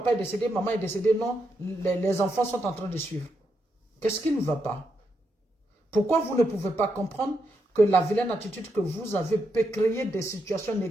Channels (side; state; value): both; normal; correlation 0.82